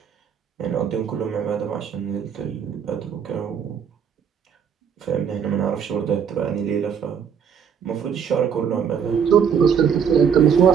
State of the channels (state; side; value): quieter; left; 7.5 dB